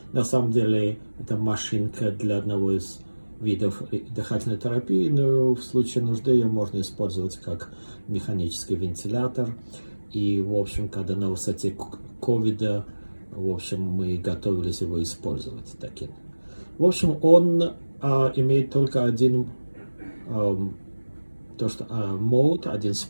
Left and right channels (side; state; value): both; inverted; correlation -1.00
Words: на самом деле это машинка для одного из видов дыхательной терапии, но в случае нужды ее можно использовать как механический вентилятор. И, в общем, когда на высоте ковида, в общем, мы готовились его использовать таким. В общем, он имеет только один мод, один